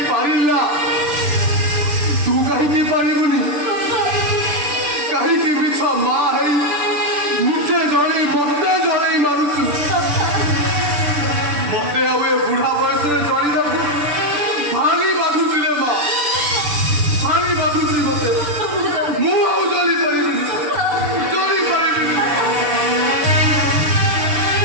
ପାରିଲା ତୁ କାହିଁକି ପାରିବୁନି? କାହିଁକି ମିଛ ମା ହେଇ ନିଜେ ଜଣେଇ ମତେ ଜଣେଇ ମାରୁଛୁ? ମତେ ଆଉ ଏ ବୁଢା ବୟସରେ ଜଣିବାକୁ ଭାରି ବାଧୁଛି ରେ ମା, ଭାରି ବାଧୁଛି ମତେ। ମୁଁ ଆଉ ଜଳି ପାରିବିନି, ଜଳି ପାରିବିନି।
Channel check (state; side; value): late; left; 6.8 ms